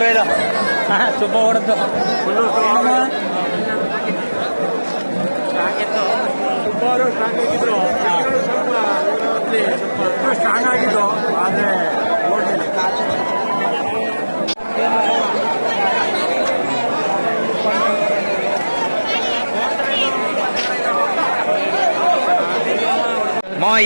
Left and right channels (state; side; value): inverted; both; correlation -1.00